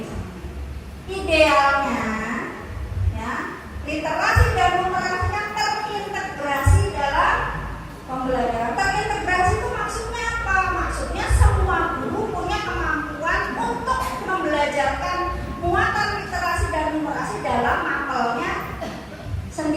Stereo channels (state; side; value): identical; both; correlation 1.00